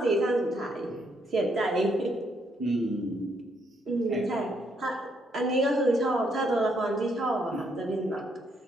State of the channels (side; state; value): both; normal; correlation 0.73